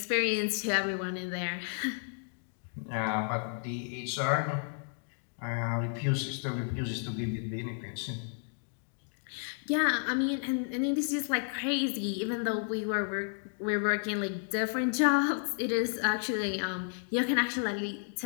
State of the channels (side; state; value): right; silent; 56 dB below the other